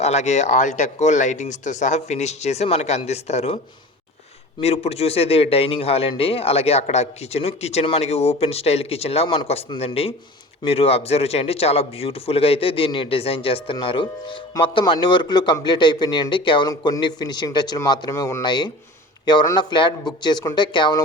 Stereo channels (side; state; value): both; normal; correlation 0.38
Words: అలాగే ఆల్టెక్ లైటింగ్స్తో సహా ఫినిష్ చేసి మనకి అందిస్తారు. మీరు ఇప్పుడు చూసేది డైనింగ్ హాల్ అండి. అలాగే అక్కడ కిచెన్ మనకి ఓపెన్ స్టైల్ కిచెన్ లాగా మనకు వస్తుందండి. మీరు అబ్జర్వ్ చేయండి, చాలా బ్యూటిఫుల్గా అయితే దీన్ని డిజైన్ చేస్తున్నారు. మొత్తం అన్ని వర్కులు కంప్లీట్ అయిపోయినాయండి. కేవలం కొన్ని ఫినిషింగ్ టచ్లు మాత్రమే ఉన్నాయి. ఎవరన్నా ఫ్లాట్ బుక్ చేసుకుంటే